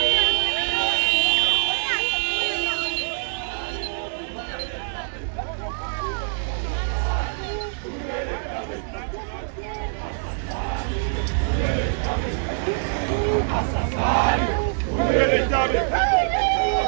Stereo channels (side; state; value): left; silent; digital silence